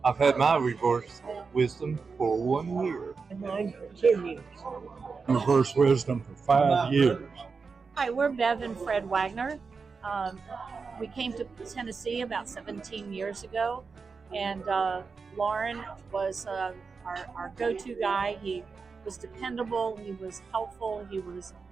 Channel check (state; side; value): quieter; left; 4.9 dB